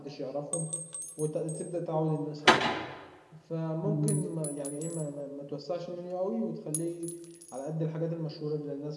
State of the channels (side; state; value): both; identical; correlation 1.00